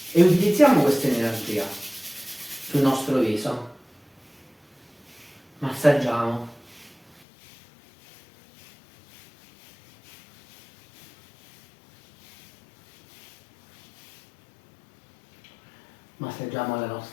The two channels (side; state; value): right; drops out; at 7.2 s